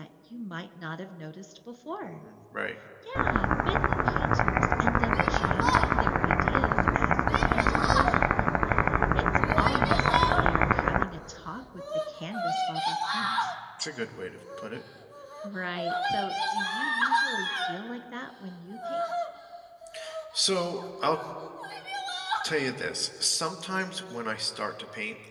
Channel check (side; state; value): both; identical; correlation 1.00